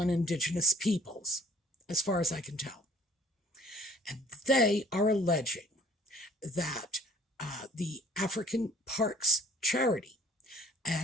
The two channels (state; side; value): normal; both; correlation 0.54